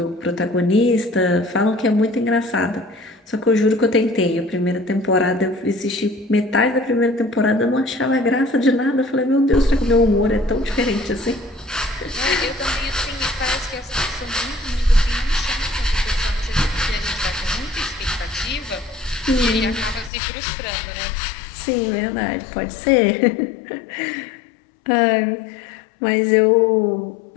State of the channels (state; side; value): drops out; right; at 20.1 s